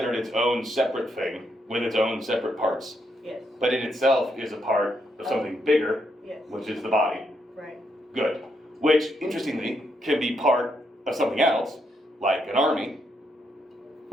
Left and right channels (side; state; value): both; normal; correlation 0.78